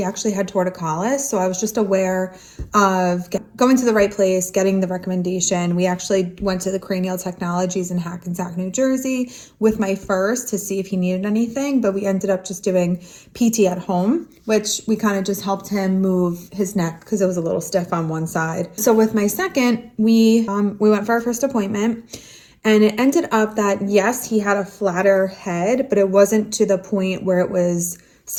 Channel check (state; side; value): identical; both; correlation 1.00